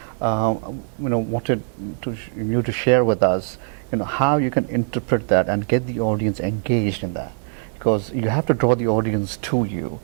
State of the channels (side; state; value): left; silent; digital silence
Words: Wanted you to share with us, how you can interpret that and get the audience engaged in that, because you have to draw the audience to you,